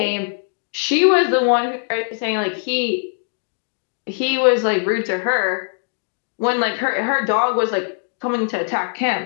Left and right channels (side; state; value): right; silent; digital silence